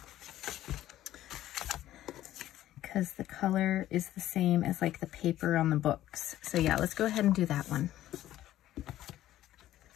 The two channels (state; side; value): quieter; right; 13.6 dB